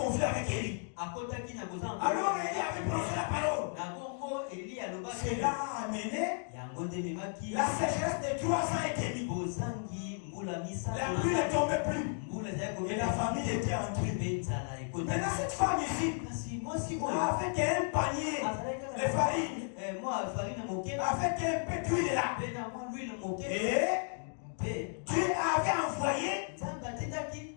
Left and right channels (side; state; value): right; silent; 55 dB below the other